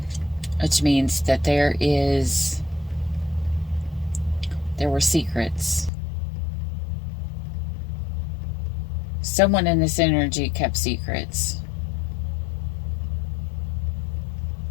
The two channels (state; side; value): drops out; right; at 5.9 s